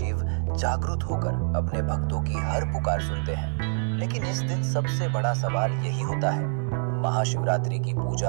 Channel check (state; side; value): silent; left; digital silence